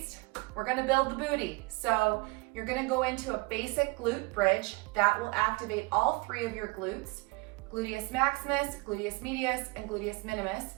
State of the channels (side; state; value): left; quieter; 26.6 dB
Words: we're gonna build the booty. So you're gonna go into a basic glute bridge that will activate all three of your glutes, gluteus maximus, gluteus medius, and gluteus minimus.